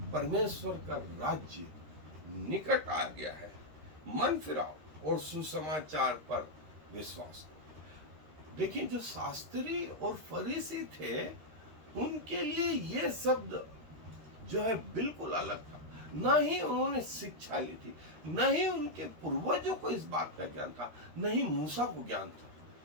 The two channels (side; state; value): left; late; 13 ms